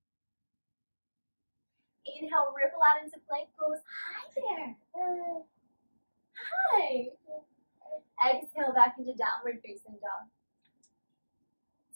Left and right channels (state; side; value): inverted; both; correlation -1.00